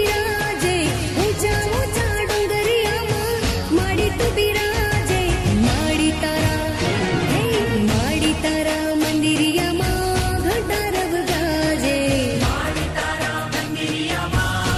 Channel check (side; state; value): both; identical; correlation 1.00